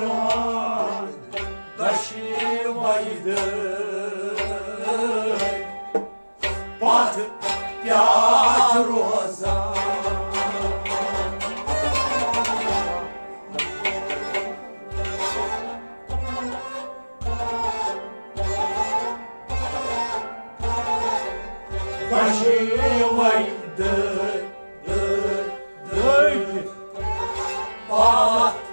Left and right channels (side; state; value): both; inverted; correlation -1.00